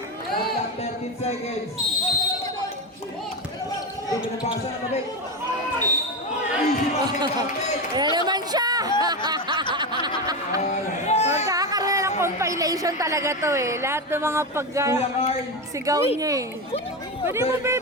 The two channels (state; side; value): normal; both; correlation 0.16